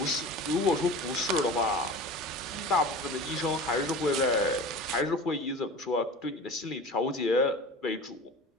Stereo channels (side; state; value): both; normal; correlation 0.36